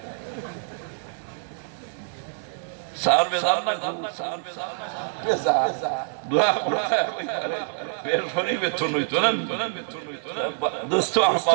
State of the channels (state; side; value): silent; left; 61 dB below the other